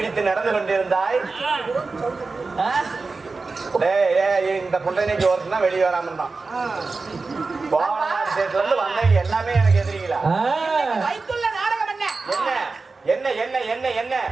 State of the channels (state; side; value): quieter; left; 4.0 dB